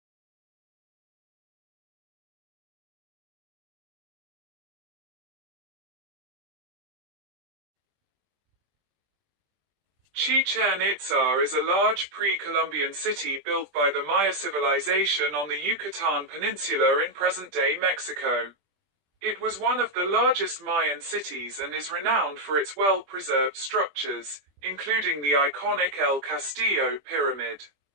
Chichen Itza is a large pre-Columbian city built by the Maya civilization on the Yucatan Peninsula in present-day Mexico. It was one of the largest Mayan cities and is renowned for its well-preserved structures, including the iconic El Castillo pyramid.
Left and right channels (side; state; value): left; late; 20 ms